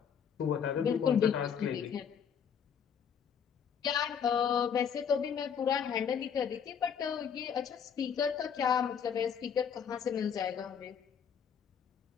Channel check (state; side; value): quieter; right; 7.5 dB